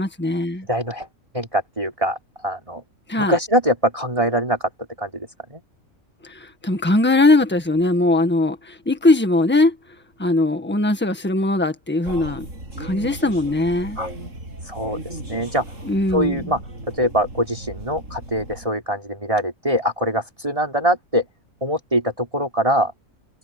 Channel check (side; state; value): both; normal; correlation 0.34